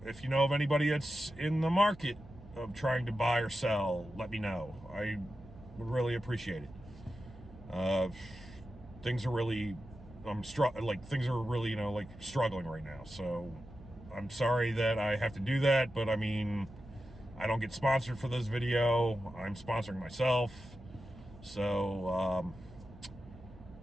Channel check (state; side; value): noise; right; hum, 19 dB below the sound